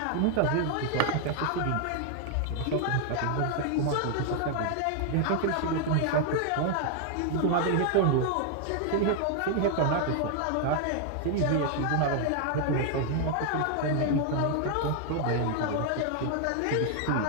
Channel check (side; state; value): both; different; correlation 0.00